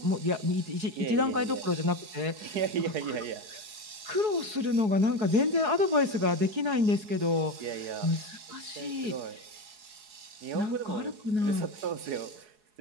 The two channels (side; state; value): left; late; 4.7 ms